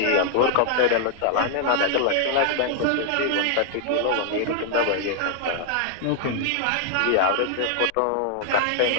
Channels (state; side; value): different; both; correlation 0.00